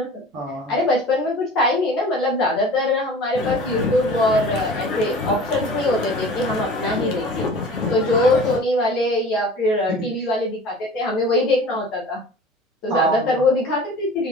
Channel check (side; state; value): both; normal; correlation 0.42